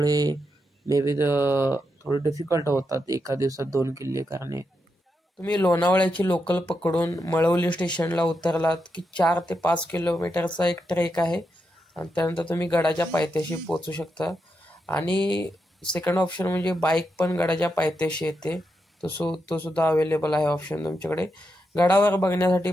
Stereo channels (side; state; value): both; normal; correlation 0.84